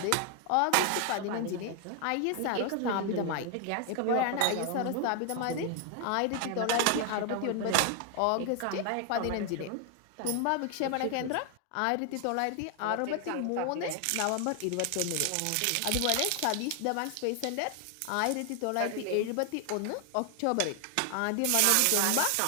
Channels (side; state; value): both; different; correlation 0.00